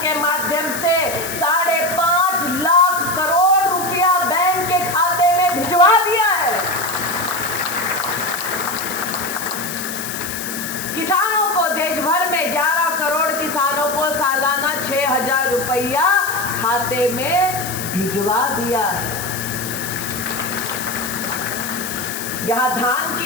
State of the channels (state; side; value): noise; left; hiss, 7 dB below the sound